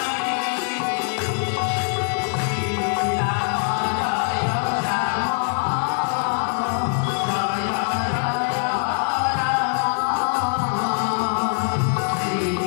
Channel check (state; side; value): silent; right; 58 dB below the other